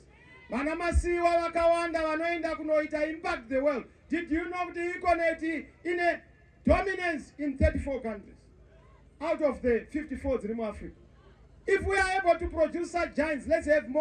Vanamasiwa wakawanda vanoenda kunoita impact the world. Did you know the economy in a dominance in 34 countries out of the 54 in Africa? If we are able to produce such giants, let's have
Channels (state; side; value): identical; both; correlation 1.00